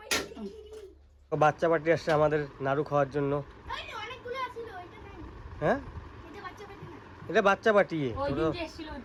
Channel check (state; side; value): identical; both; correlation 1.00